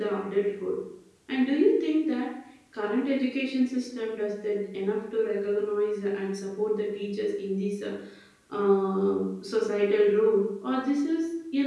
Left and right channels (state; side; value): identical; both; correlation 1.00